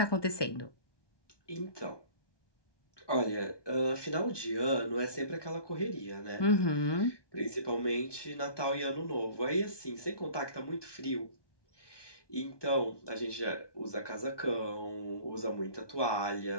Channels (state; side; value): late; right; 1.2 ms